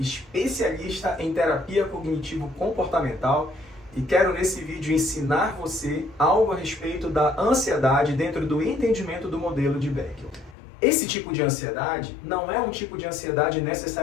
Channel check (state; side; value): drops out; right; at 10.6 s